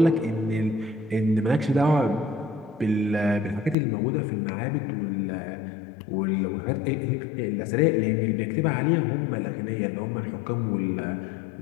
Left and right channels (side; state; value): right; drops out; at 3.8 s